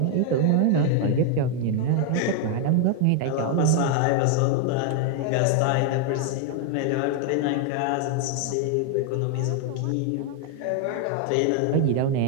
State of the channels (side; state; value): both; different; correlation 0.00